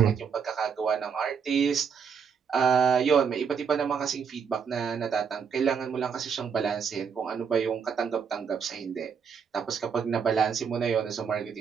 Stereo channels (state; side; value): quieter; left; 6.6 dB